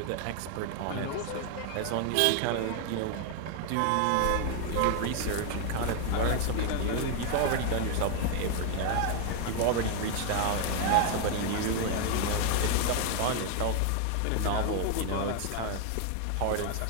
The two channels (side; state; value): both; different; correlation 0.01